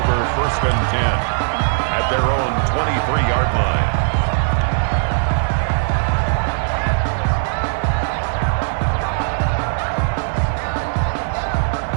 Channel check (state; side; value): silent; left; 57 dB below the other